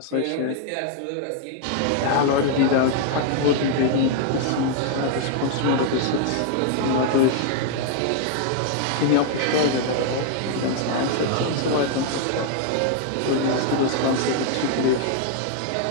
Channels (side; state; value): both; different; correlation 0.00